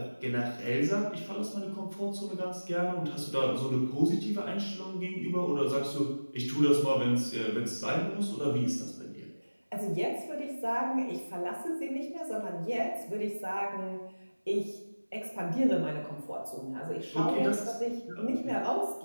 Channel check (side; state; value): both; inverted; correlation -1.00